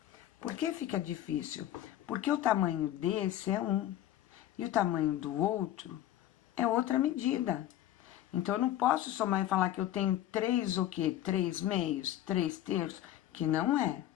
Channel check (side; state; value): right; quieter; 12.8 dB